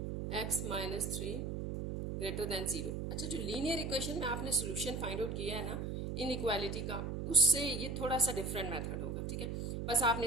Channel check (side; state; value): right; noise; hum, 3 dB below the sound